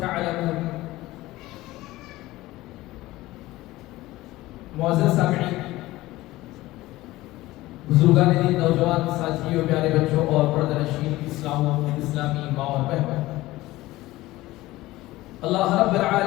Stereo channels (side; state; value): right; quieter; 17.9 dB